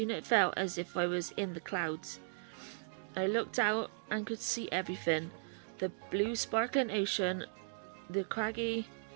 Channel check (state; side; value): silent; left; digital silence